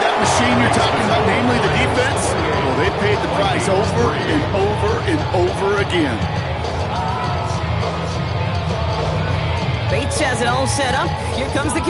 that machine you're talking about, namely the defense, well, they paid the price over and over and over again. Bates has it all set up. Here comes the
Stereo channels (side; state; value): both; identical; correlation 1.00